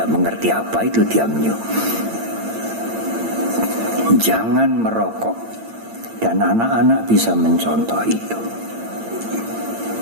mengerti apa itu tiam nyo. Jangan merokok. Dan anak-anak bisa mencontoh itu.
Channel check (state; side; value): late; left; 8.9 ms